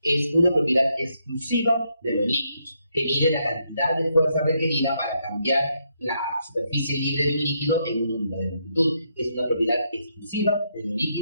es una propiedad exclusiva de los líquidos, que mide la cantidad de fuerza requerida para cambiar la superficie libre de un líquido en una unidad de longitud. Es una propiedad exclusiva de los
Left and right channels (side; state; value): both; inverted; correlation -0.77